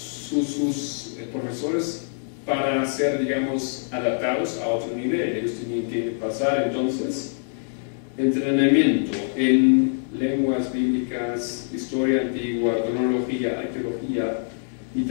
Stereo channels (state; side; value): silent; right; digital silence